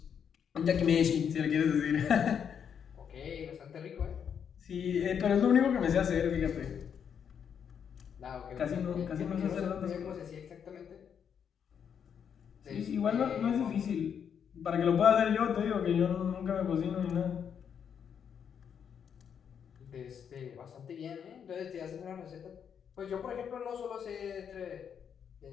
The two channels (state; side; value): quieter; right; 7.7 dB